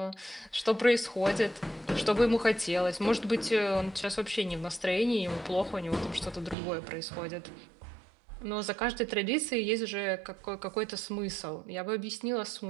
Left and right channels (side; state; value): left; drops out; at 6.6 s